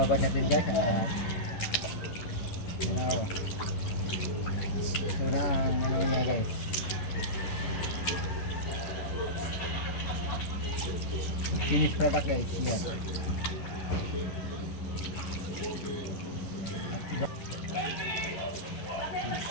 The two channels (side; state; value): right; late; 11 ms